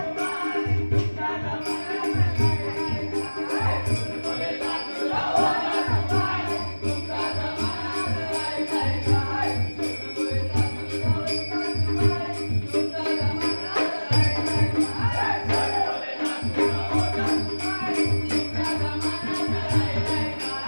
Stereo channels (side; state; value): both; inverted; correlation -1.00